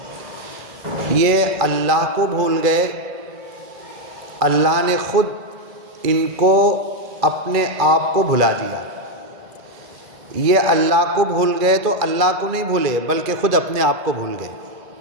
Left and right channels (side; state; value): left; late; 2.3 ms